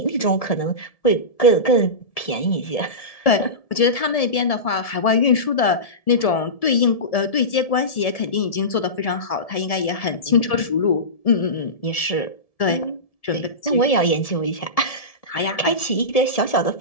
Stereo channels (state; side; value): late; right; 1.7 ms